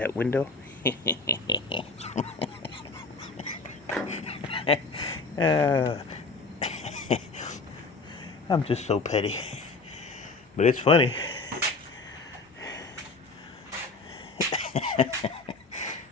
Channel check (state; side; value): quieter; right; 3.8 dB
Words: window. I'm just so petty. But it's funny.